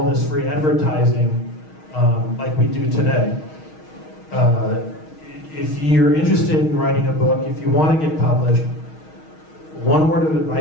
this free advertising like we do today. If you're interested in writing a book, if you want to get published, one word of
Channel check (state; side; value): late; right; 6.4 ms